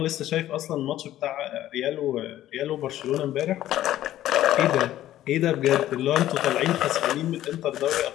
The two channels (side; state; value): right; quieter; 13.4 dB